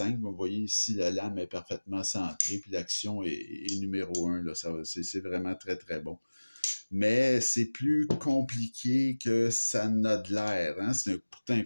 vous voyez ici, la lame est parfaitement centrée, puis l'action est numéro 1, là, c'est vraiment très, très bon. Mais c'est plus compliqué que ça n'a de l'air, hein? C'est pourtant un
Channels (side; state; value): both; inverted; correlation -1.00